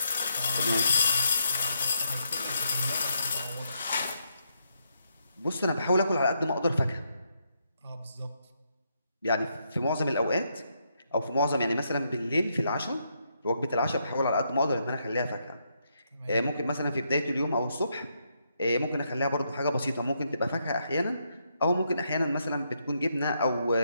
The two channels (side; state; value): both; inverted; correlation -0.78